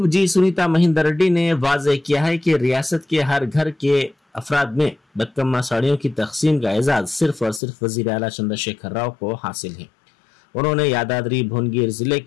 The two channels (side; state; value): right; drops out; at 7.6 s